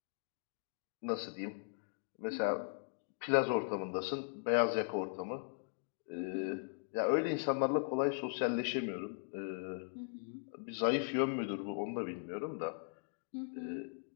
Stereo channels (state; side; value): silent; right; digital silence